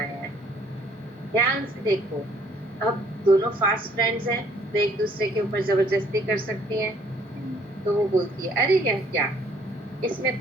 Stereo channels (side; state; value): both; normal; correlation 0.61